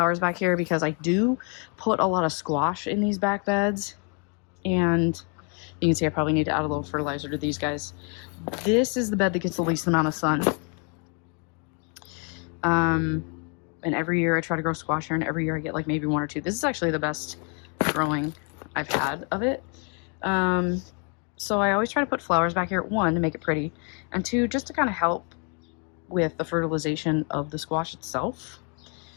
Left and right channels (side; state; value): right; quieter; 37.3 dB